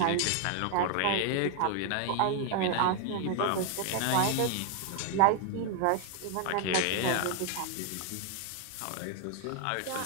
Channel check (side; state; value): both; different; correlation 0.00